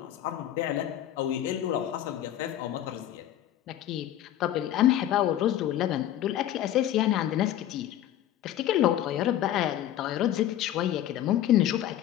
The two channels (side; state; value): right; quieter; 12.1 dB